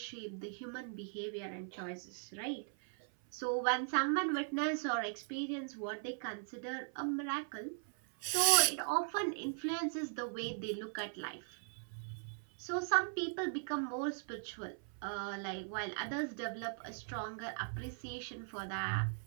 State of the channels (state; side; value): silent; left; 52 dB below the other